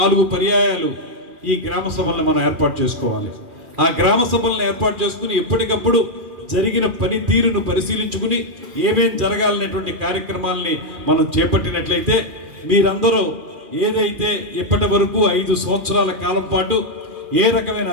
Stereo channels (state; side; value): late; left; 2.4 ms